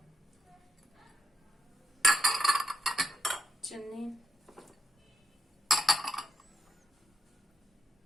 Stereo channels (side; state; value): both; normal; correlation 0.84